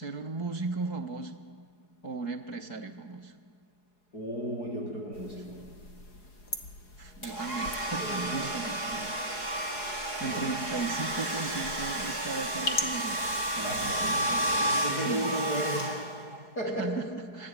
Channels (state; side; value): late; right; 4.8 ms